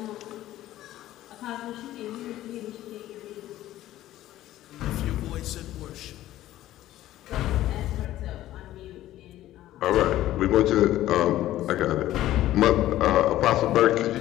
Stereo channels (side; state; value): right; quieter; 14.3 dB